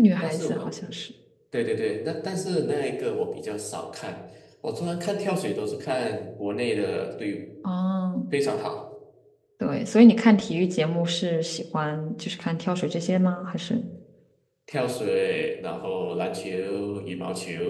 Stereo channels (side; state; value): both; identical; correlation 1.00